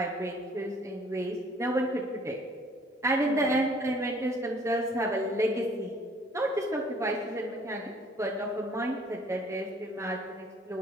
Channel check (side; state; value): both; normal; correlation 0.57